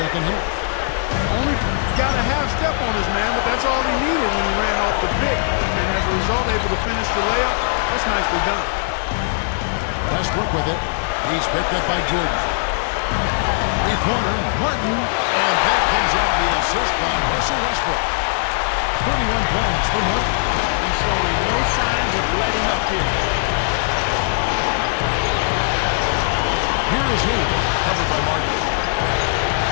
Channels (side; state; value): right; silent; digital silence